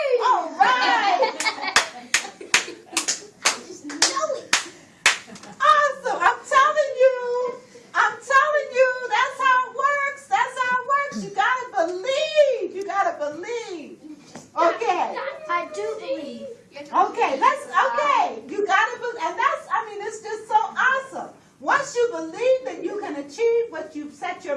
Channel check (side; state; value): both; identical; correlation 1.00